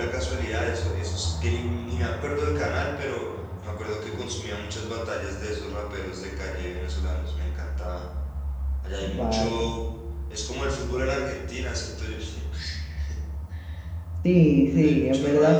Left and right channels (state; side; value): identical; both; correlation 1.00